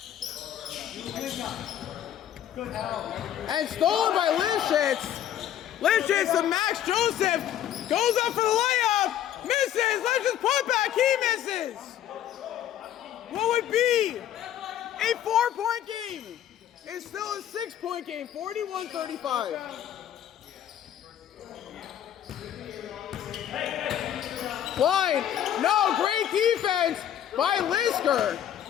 And stolen by Lifshitz. Lifshitz to Max Joseph. Goes up for the layup. Misses. Lifshitz put back. He misses. What would be a 4-point game? It's still a 6-point game. 41-35. Klein. No, great defense by Lisker.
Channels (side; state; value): right; quieter; 10.9 dB